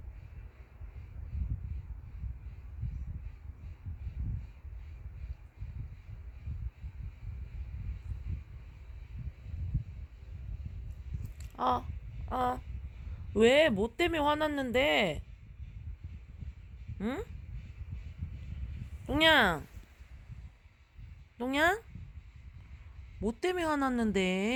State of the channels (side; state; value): both; identical; correlation 1.00